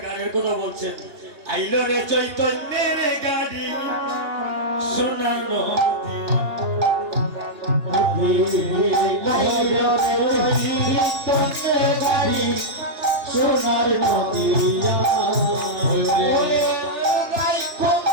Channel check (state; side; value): late; left; 2.8 ms